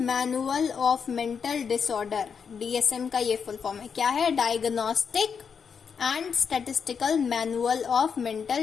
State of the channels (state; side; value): quieter; right; 6.5 dB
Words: of mental disorder. DSM का ये फुल फॉर्म है, क्या है? Diagnostic and statistical manual of